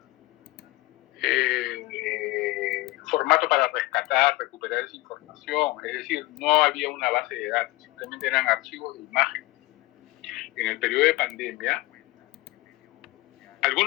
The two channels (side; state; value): right; quieter; 20.3 dB